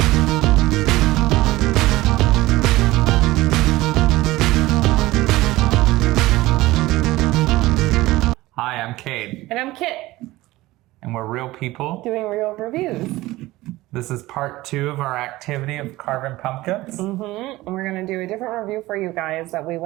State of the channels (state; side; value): quieter; left; 18.4 dB